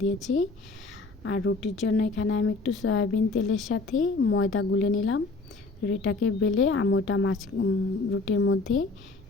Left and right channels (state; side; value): quieter; right; 3.6 dB